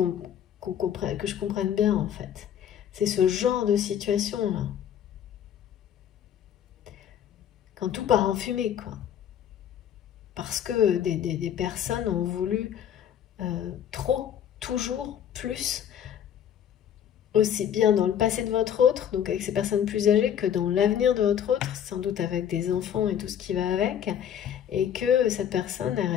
que je comprenne bien, en fait. C'est ce genre de situation-là. Quand tout part en fumée, quoi. Parce que des personnes ont voulu trop, toujours, plus, aussi bien dans le passé de votre autre, donc avec ces personnes plus âgées, que dans l'avenir de votre autre, sans doute avec des enfants et tout ce qui va avec, et que cette personne est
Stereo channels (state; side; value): quieter; right; 9.5 dB